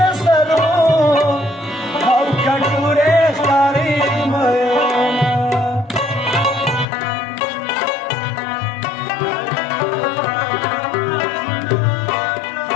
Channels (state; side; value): drops out; right; at 6.9 s